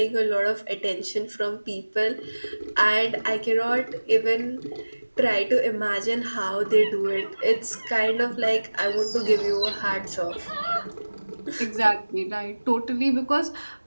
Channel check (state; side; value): inverted; both; correlation -1.00